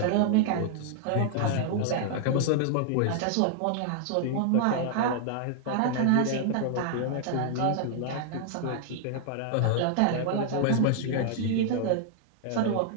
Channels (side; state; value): both; different; correlation -0.01